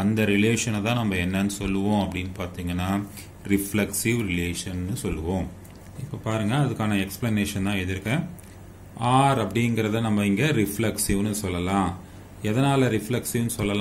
அந்த ரிலேஷனை தான் நம்ம என்னன்னு சொல்லுவோம் அப்படின்னு பார்த்தீங்கன்னா ரிஃப்ளெக்சிவ் ரிலேஷன்னு சொல்லுவோம். இப்போ பாருங்க, அதுக்கான எக்ஸ்பிளனேஷன் தான் எழுதியிருக்கேன். ஆர் அப்படிங்கிறத நம்ம இங்கே ரிஃப்ளெக்சிவ்னு சொல்லலாம். எதனால ரிஃப்ளெக்சிவ்னு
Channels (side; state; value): both; identical; correlation 1.00